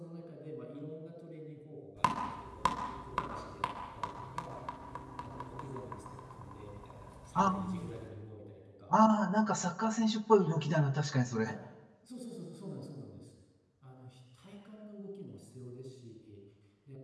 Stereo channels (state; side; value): identical; both; correlation 1.00